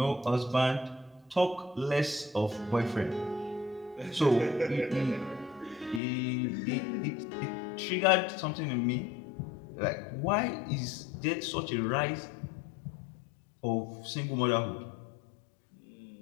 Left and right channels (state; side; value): drops out; right; at 6.0 s